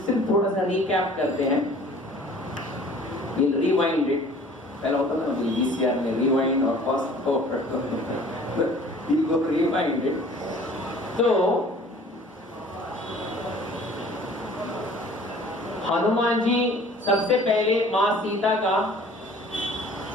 थोड़ा सा रिकैप करते हैं। We'll rewind it. पहला होता था ना VCR में rewind और fast forward, we'll go rewind it. तो हनुमान जी सबसे पहले माँ सीता का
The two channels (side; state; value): both; normal; correlation 0.50